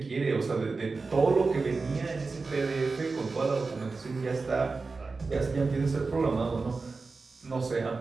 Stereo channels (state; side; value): quieter; left; 4.1 dB